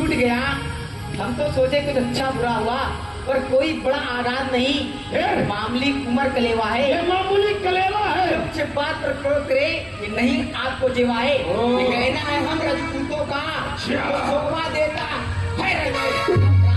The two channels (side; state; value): both; identical; correlation 1.00